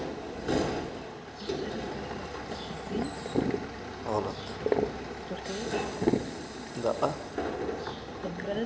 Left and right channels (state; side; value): identical; both; correlation 1.00